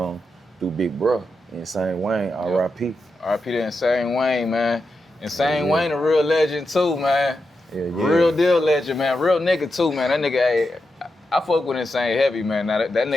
through Big Bruh, Insane Wayne, R.I.P. R.I.P. to Insane Wayne, man. Insane Wayne a real legend too, man. Real deal legend, man. Real nigga too, man. That nigga, hey, I fuck with Insane heavy, man. Now that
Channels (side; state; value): both; normal; correlation 0.87